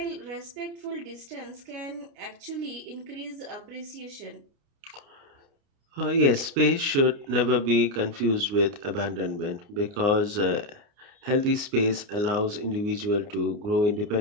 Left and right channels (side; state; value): left; late; 29 ms